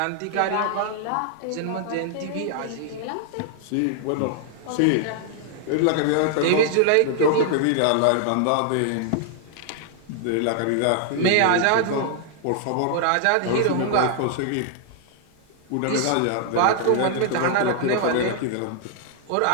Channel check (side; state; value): both; different; correlation 0.00